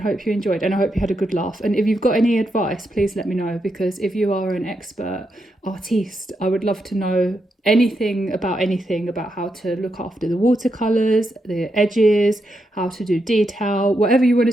hope you enjoyed, and I hope you had a good laugh. And if you've got any advice, please let me know, because if you are an expert artiste, I would love to know anything about how to look after the watercolors, the edges, how to do detail, whatever you want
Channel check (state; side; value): normal; both; correlation 0.83